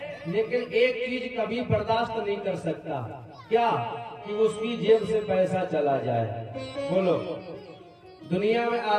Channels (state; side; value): identical; both; correlation 1.00